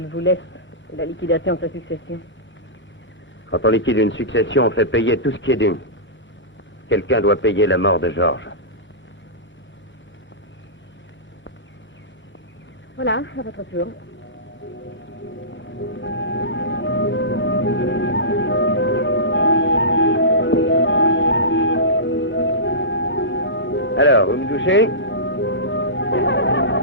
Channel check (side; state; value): both; normal; correlation -0.20